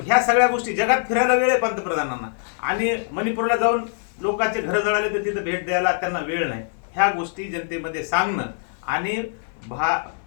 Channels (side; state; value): right; silent; digital silence